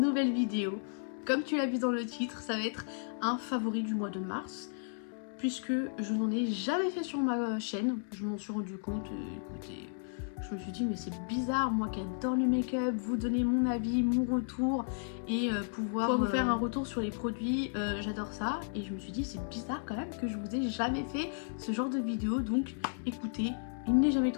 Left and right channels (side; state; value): right; silent; digital silence